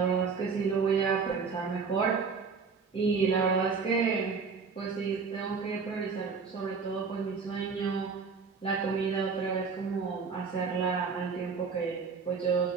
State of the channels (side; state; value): left; quieter; 5.3 dB